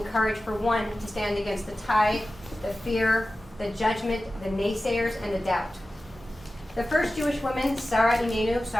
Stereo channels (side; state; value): both; normal; correlation 0.95